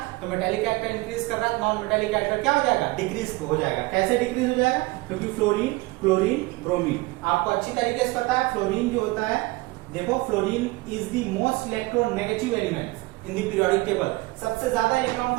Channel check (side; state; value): left; quieter; 22.1 dB